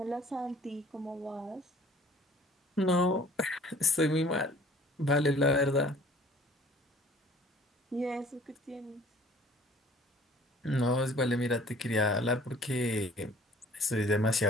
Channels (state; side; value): normal; both; correlation 0.52